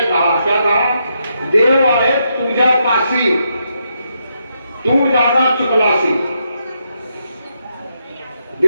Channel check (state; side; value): inverted; both; correlation -0.80